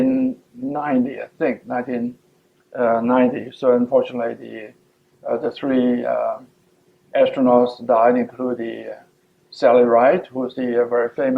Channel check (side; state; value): both; identical; correlation 1.00